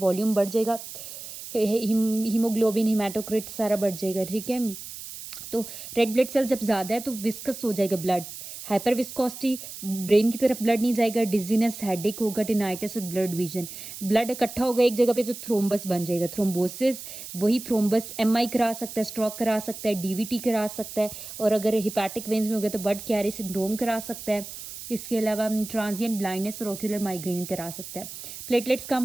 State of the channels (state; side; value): noise; right; hiss, 11 dB below the sound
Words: बढ़ जाएगा, हीमोग्लोबिन हेमाटोक्रिट सारा बढ़ जाएगा, ठीक है। तो रेड ब्लड सेल जब ज़्यादा है तो विस्कस हो जाएगा ब्लड, हाइपर विस्कोसिटी, ब्रेन की तरफ ब्लड नहीं जाएगा, डिजीनेस, हेडेक होगा, टिनाइटिस और ब्लड विजन। ब्लड इकट्ठा होगा एक जगह पे तो थ्रोम्बस बन जाएगा, थ्रोम्बोसिस, वही थ्रोम्बस एमआई करा सकता है, स्ट्रोक करा सकता है, डीवीटी करा सकता है, और अगर हिपैटिक वेन्स में हो गया तो बर्ड कैरी सिंड्रोम करा सकता है। इसके अलावा ट्रांजिएंट ब्लाइंडनेस और ओक्यूलर माइग्रेन करा सकता है। प्लेटलेट्स कम